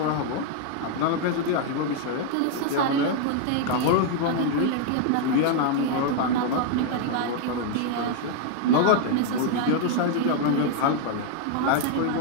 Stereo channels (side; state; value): both; different; correlation 0.00